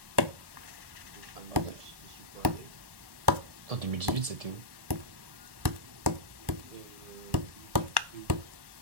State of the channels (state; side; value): late; left; 1.2 ms